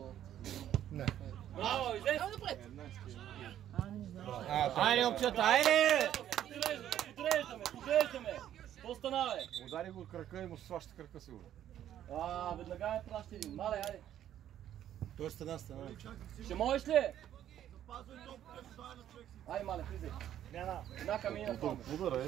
Не. Браво, излез! Айде, момчета, айде! Подреждаме! Какво стана, бе? Удари го от крака и му сваща крака сигурно. Веднага ме праща един. Мале, айде. Той е стена. Ще можеш ли? Айде, мале, влизай. Една камина в това. Удара е,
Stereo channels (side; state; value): left; quieter; 11.2 dB